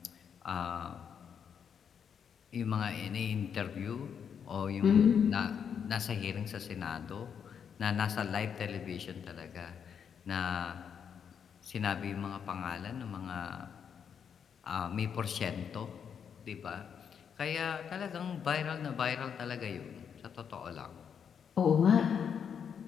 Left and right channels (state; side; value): quieter; right; 7.5 dB